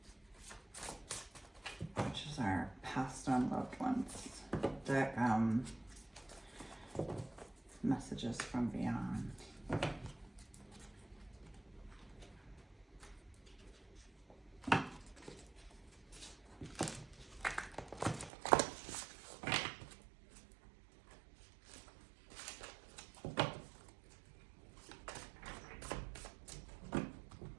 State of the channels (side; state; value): left; drops out; at 18.3 s